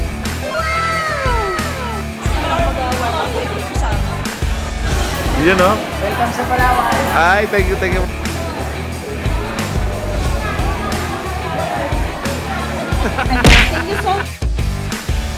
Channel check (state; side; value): identical; both; correlation 1.00